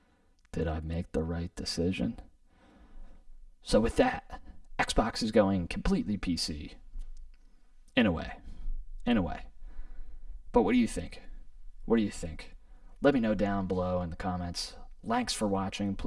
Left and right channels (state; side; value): identical; both; correlation 1.00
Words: did I make the right decision? So with that, Xbox is going completely PC, in a way. But what do you think? Let me know down below in the comments. Thanks for watching.